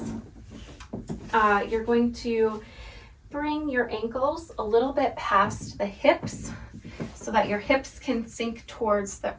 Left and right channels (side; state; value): both; identical; correlation 1.00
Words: you're going to bring your ankles a little bit past the hips so that your hips can sink towards the